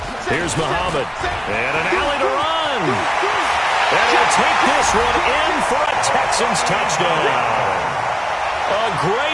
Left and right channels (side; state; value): both; identical; correlation 1.00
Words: Here's Muhammad. And an alley to run. And he'll take this one in for a Texans touchdown. A